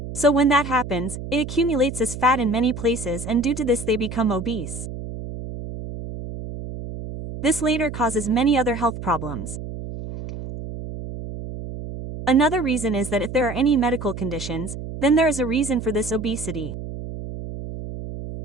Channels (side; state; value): right; noise; hum, 9 dB below the sound